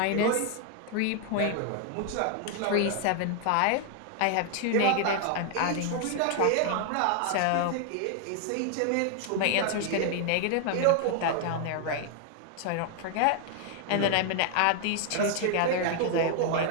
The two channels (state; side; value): different; both; correlation 0.00